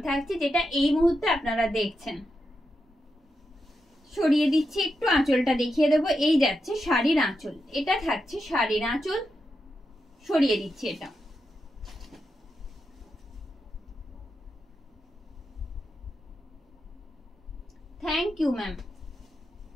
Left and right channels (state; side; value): normal; both; correlation 0.87